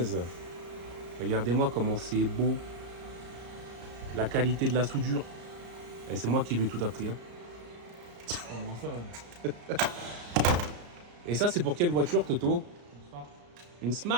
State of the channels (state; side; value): late; left; 34 ms